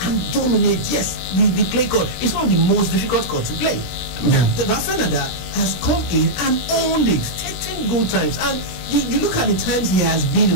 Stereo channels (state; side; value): late; right; 17 ms